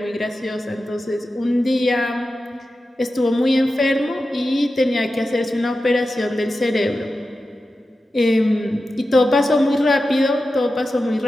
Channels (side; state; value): both; normal; correlation 0.92